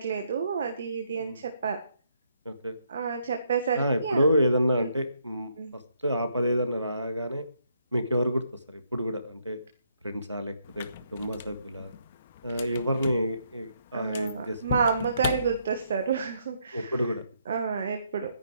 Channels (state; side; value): inverted; both; correlation -0.74